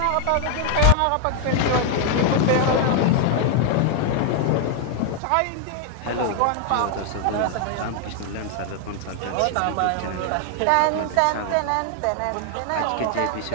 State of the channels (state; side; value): different; both; correlation 0.00